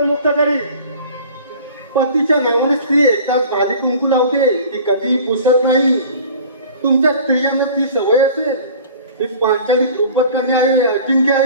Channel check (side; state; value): both; inverted; correlation -0.44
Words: करेन. पतीच्या नावाने स्त्री एकदाच भाली कुंकू लावते, ती कधीही पुसत नाही. तुमच्या स्त्रियांना ती सवय असेल. मी पांचाली द्रुपद कन्या आहे, अजिंक्य